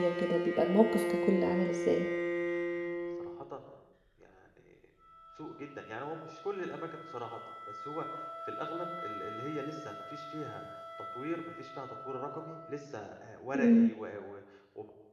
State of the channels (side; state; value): both; identical; correlation 1.00